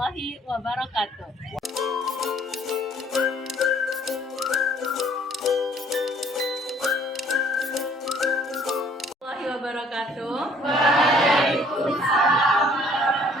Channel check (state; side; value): normal; both; correlation 0.58